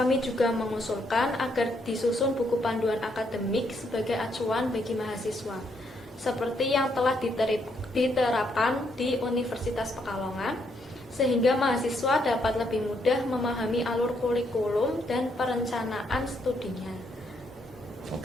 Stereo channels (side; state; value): both; normal; correlation 0.74